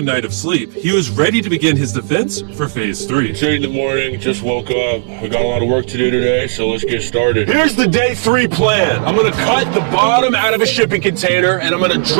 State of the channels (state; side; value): quieter; left; 36.8 dB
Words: night of sleep, he was ready to begin his defense for Phase 3. 8 in the morning, just woke up. We got a lot of work to do today, so let's get started. Here's the day 3 plan. I'm gonna cut the bottom out of a shipping container and I'm gonna